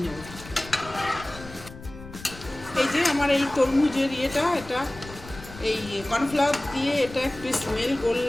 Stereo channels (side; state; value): left; noise; rumble, 16 dB below the sound